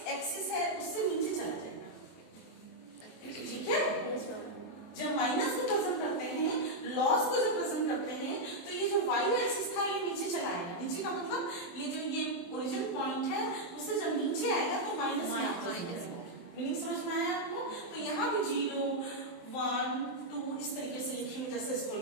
एक्सिस है उससे नीचे चला जाएगा। ठीक है, जब माइनस को प्रेजेंट करते हैं, लॉस को जब प्रेजेंट करते हैं तो ये जो वाई एक्सिस था ये नीचे चला आएगा। नीचे का मतलब ये जो ये ओरिजिन पॉइंट है उससे जब नीचे आएगा तो माइनस मीनिंग समझ में आया आपको? तो यहाँ भी 0 1 2 इस तरीके से लिखेंगे जैसे इसको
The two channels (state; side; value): late; right; 23 ms